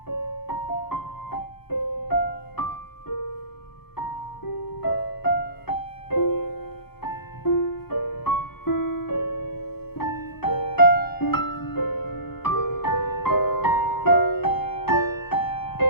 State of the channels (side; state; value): right; late; 0.96 ms